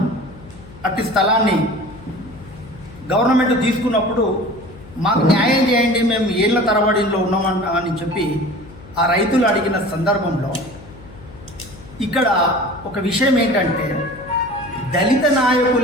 అట్టి స్థలాన్ని గవర్నమెంట్ తీసుకున్నప్పుడు మాకు న్యాయం చేయండి, మేము ఏళ్ల తరబడిలో ఉన్నామని చెప్పి ఆ రైతులు అడిగిన సందర్భంలో ఇక్కడ ఒక విషయం ఏంటంటే, దళిత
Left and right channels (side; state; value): left; noise; hum, 20 dB below the sound